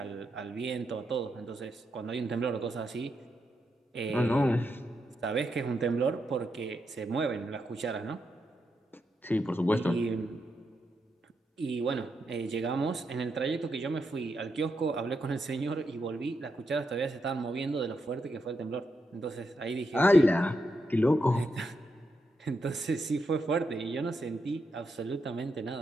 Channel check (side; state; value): both; normal; correlation 0.83